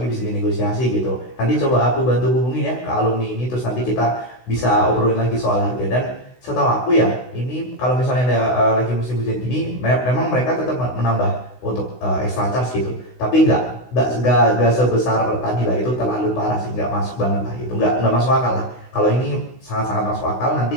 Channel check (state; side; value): late; right; 16 ms